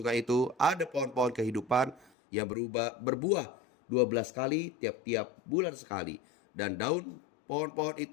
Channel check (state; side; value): drops out; right; at 2.1 s